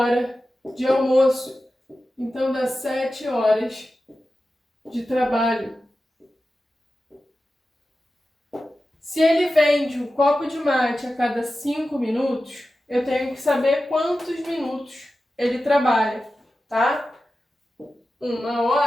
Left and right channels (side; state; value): both; normal; correlation 0.93